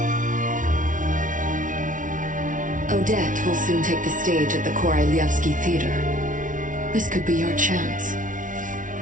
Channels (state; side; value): late; left; 0.38 ms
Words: Odette will soon take the stage at the Korolyevsky Theater. This could be your chance.